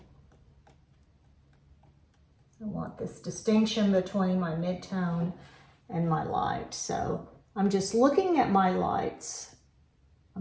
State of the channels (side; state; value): both; identical; correlation 1.00